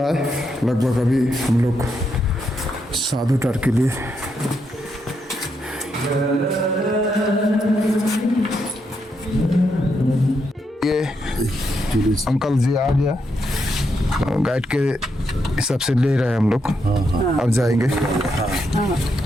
है लगभग। अभी हम लोग साधु टार के लिए ये अंकल जी आ गया, गाइड के हिसाब से ले रहे हैं हम लोग। अब जाएंगे।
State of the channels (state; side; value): normal; both; correlation 0.80